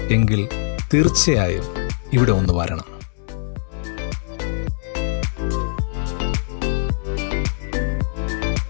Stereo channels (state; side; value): silent; right; 64 dB below the other